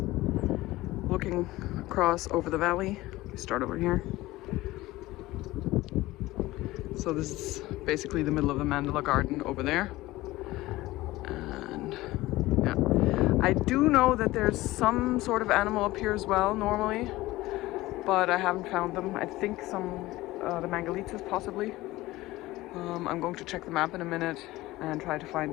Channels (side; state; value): right; quieter; 18.2 dB